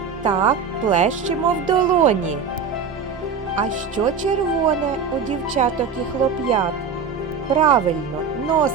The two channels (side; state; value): left; quieter; 5.8 dB